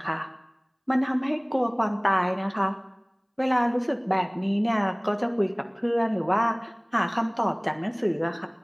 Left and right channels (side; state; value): both; identical; correlation 1.00